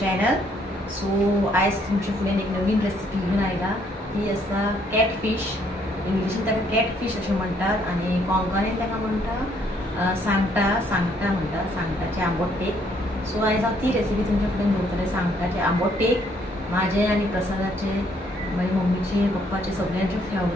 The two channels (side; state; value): both; normal; correlation 0.67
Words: channel. So आयज तुमचे फुडें एक नवीन रेसिपी घेऊन आयला. ती आसा कॅटफिश. इंग्लिशीन ताका कॅटफिश अशें म्हणटात आनी कोंकणीन ताका म्हणटा सांगटा म्हणटा, सांगटाचे आंबोटेक. सो आयज हांव ती रेसिपी तुमच्या फुडें दवरतलें. सांगटाचे आंबोटेक म्हाजे आनी प्रसादाचे, मागीर मम्मीचे, पप्पाचे सगळ्यांचे